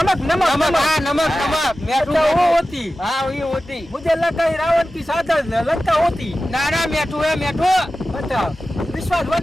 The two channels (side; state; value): both; normal; correlation 0.95